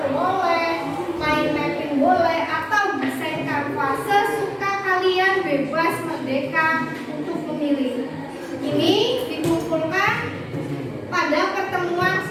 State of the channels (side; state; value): both; identical; correlation 1.00